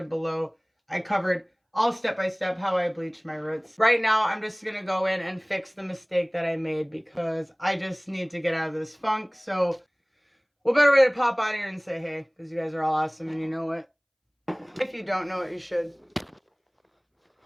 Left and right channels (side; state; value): both; identical; correlation 1.00